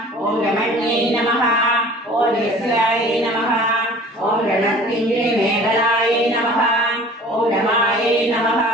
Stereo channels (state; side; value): normal; both; correlation 0.46